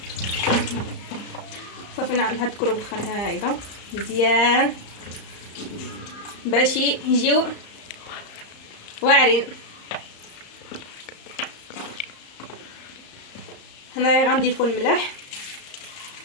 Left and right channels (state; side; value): late; right; 34 ms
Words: صافي. نهدكرو بالخل هايدا مزيان باش يجيو واعرين. هنايا غنضيفو الملح،